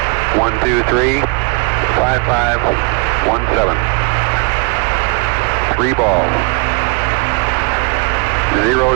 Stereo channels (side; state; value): left; quieter; 30.8 dB